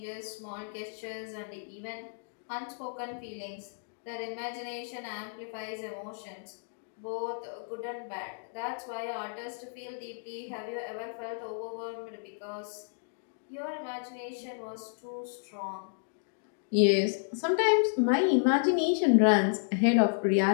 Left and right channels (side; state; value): right; silent; digital silence